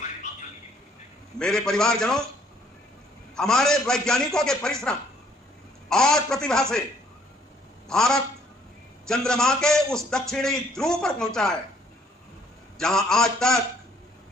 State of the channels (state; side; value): normal; both; correlation 0.63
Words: मेरे परिवारजनों, हमारे वैज्ञानिकों के परिश्रम और प्रतिभा से भारत चंद्रमा के उस दक्षिणी ध्रुव पर पहुंचा है, जहां आज तक